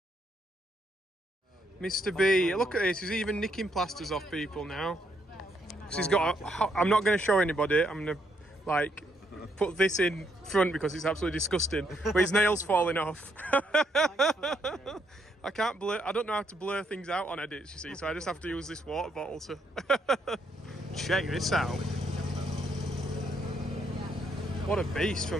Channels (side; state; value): both; normal; correlation 0.75